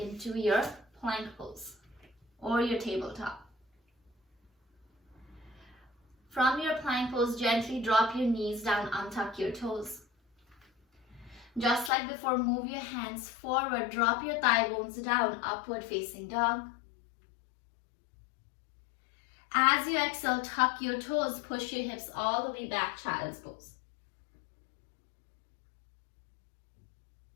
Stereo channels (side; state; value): right; drops out; at 11.9 s